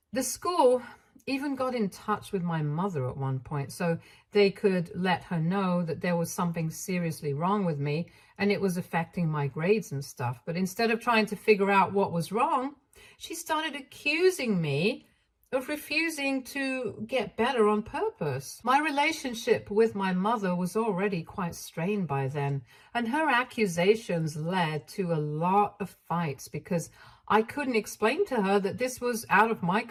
The school even got in touch with my mother at one point so they could let her know that there was something seriously wrong with me and it was affecting my grades and stuff. But instead of trying to figure out what was wrong, she started accusing me of refusing to get better on purpose. My relationship with my mother was already quite strained by then, and her accusations led to a lot of fights because I couldn't explain to her that this was out of my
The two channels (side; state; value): both; identical; correlation 1.00